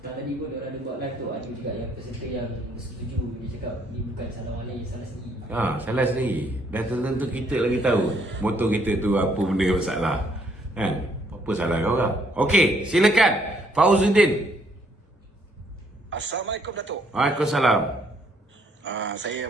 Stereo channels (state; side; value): normal; both; correlation 0.68